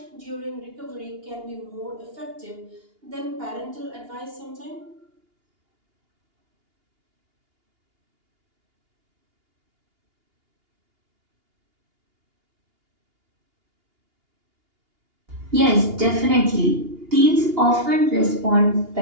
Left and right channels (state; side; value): late; left; 2.8 ms